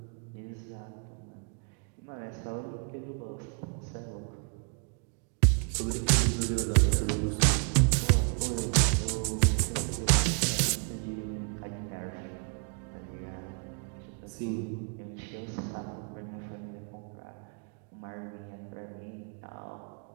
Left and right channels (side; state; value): left; quieter; 39.3 dB